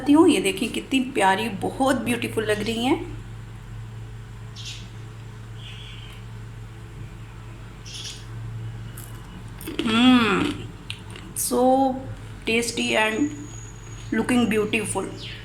हूँ। ये देखिए कितनी प्यारी, बहुत ब्यूटीफुल लग रही हैं। So tasty and looking beautiful.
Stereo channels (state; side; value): identical; both; correlation 1.00